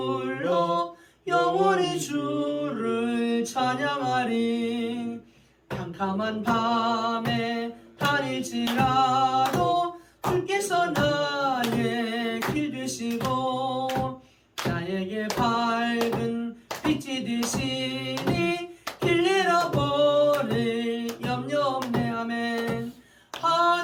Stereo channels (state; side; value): identical; both; correlation 1.00